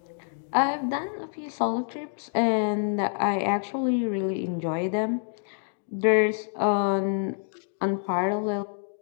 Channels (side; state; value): right; silent; digital silence